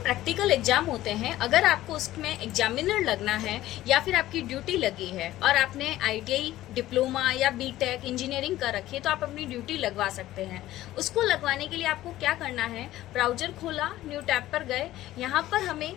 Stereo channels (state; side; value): quieter; right; 15.0 dB